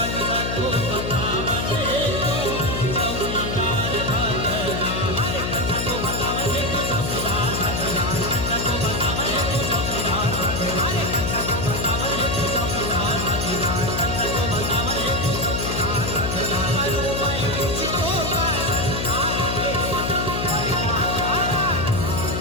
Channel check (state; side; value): noise; left; hum, 2 dB below the sound